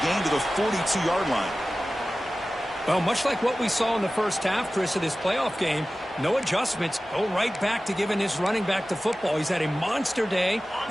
gain to the 42-yard line. Well, much like what we saw in the first half, Chris, of this playoff game, no adjustments. Go right back to giving his running back the football. He's had a monster day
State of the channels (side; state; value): both; normal; correlation 0.96